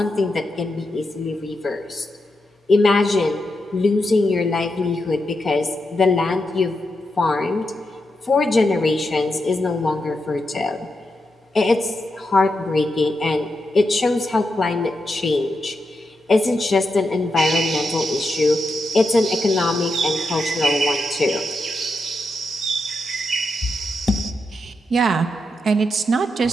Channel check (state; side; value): normal; both; correlation 0.86